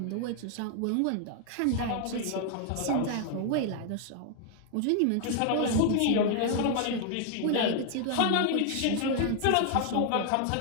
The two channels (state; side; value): different; both; correlation 0.00